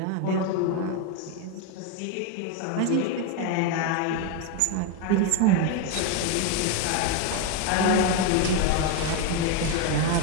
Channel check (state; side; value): different; both; correlation 0.02